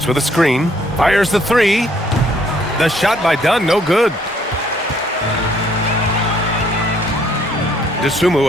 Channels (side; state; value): both; normal; correlation 0.65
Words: with a screen. Fires the 3. The shot by Dunn, no good.